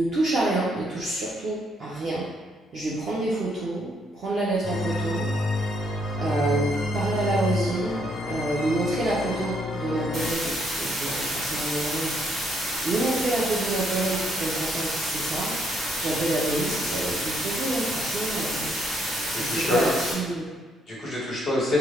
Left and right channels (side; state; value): both; normal; correlation 0.72